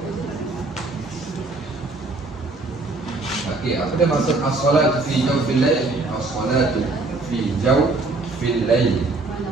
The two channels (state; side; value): quieter; left; 3.4 dB